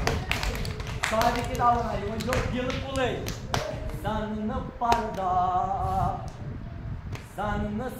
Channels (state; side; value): identical; both; correlation 1.00